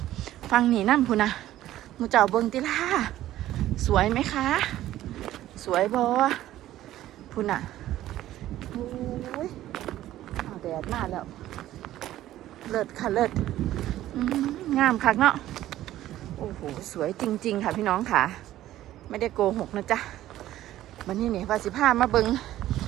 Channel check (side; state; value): left; quieter; 13.9 dB